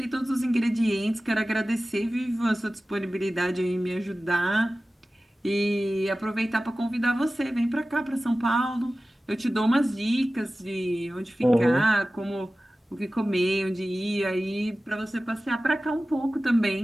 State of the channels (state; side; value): normal; both; correlation 0.96